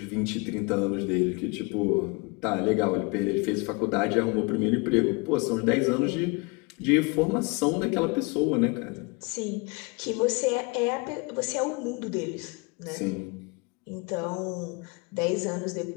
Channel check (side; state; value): right; quieter; 28.8 dB